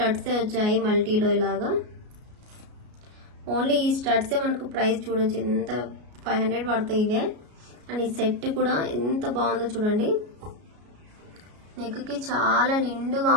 వచ్చాయి మల్టీలో ఇలాగా. ఓన్లీ ఈ స్టడ్సే మనకు ప్రైస్ చూడొచ్చు ఎంత 500 పడతాయి ఇవే. అండ్ ఈ సెట్ కూడా ఎంత బాగుందో చూడండి. నెక్ కి చాలా నిండుగా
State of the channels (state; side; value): late; left; 33 ms